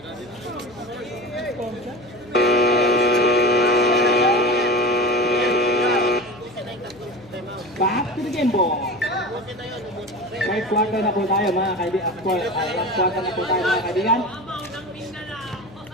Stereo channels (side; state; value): left; noise; hum, 22 dB below the sound